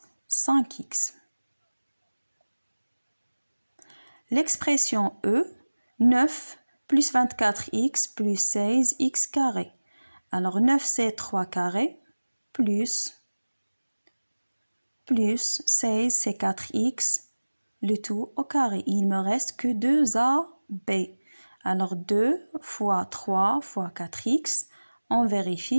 5x. L'expression E, 9 plus 24x plus 16x carré. Alors 9 c'est 3 carré plus 16 c'est 4x, le tout au carré. Il me reste que 2AB. Alors 2 fois 3 fois 4x, on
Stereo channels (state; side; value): inverted; both; correlation -1.00